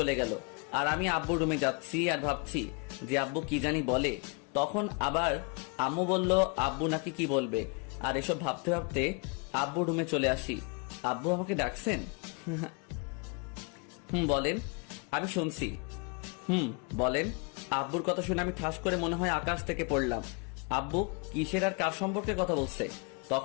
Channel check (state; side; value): quieter; right; 34.6 dB